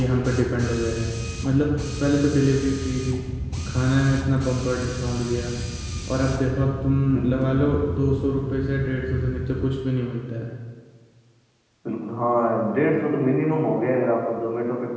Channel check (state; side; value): identical; both; correlation 1.00